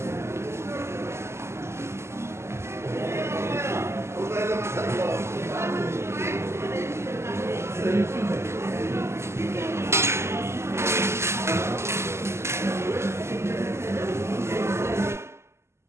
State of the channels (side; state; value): left; late; 0.13 ms